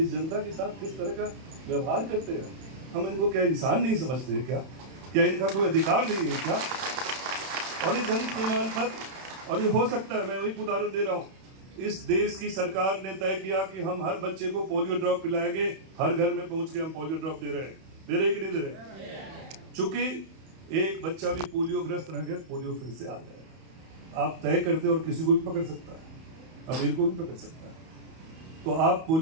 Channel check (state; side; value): late; left; 31 ms